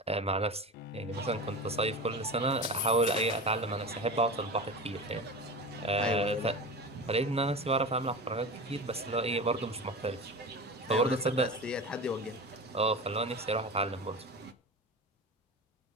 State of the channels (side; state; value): both; normal; correlation 0.29